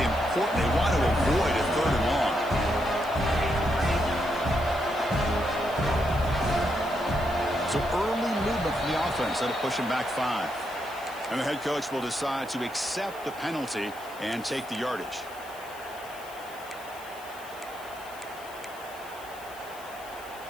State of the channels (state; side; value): noise; left; hiss, 20 dB below the sound